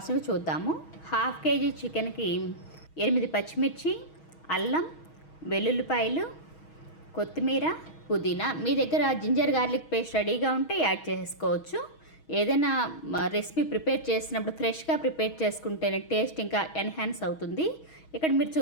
చూద్దాము. హాఫ్ కేజీ చికెన్కి 8 పచ్చిమిర్చి, అల్లం, వెల్లుల్లిపాయలు, కొత్తిమీర, పుదీనా. మీ దగ్గర జింజర్ గార్లిక్ పేస్ట్ రెడీగా ఉంటే యాడ్ చేసుకోవచ్చు. ఏదైనా రెసిపీ ప్రిపేర్ చేసినప్పుడు ఫ్రెష్గా ప్రిపేర్ చేసుకుంటేనే టేస్ట్ ఇంకా ఎన్హాన్స్ అవుతుంది. ఇక్కడ మీరు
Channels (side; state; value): right; late; 6.3 ms